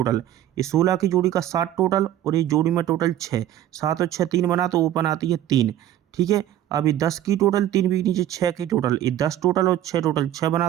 ये 16 की जोड़ी का 7 टोटल और ये जोड़ी में टोटल 6, 7 और 6 3 बना तो ओपन आती है 3, ठीक है। अब ये 10 की टोटल 3 बीच नीचे 6 की टोटल, ये 10 टोटल और 6 टोटल 6 बना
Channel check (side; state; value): left; quieter; 12.3 dB